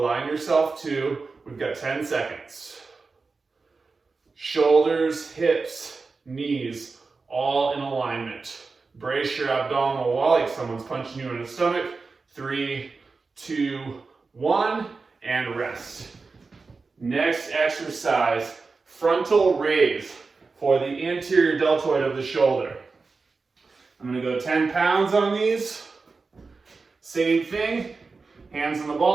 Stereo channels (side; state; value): left; quieter; 4.2 dB